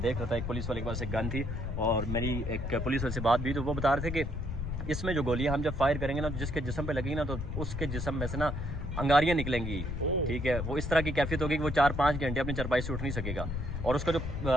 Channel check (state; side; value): noise; left; rumble, 4 dB below the sound